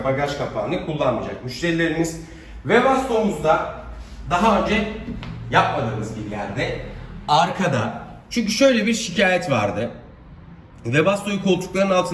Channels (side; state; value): both; identical; correlation 1.00